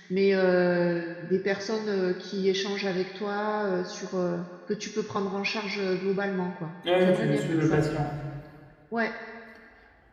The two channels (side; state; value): both; identical; correlation 1.00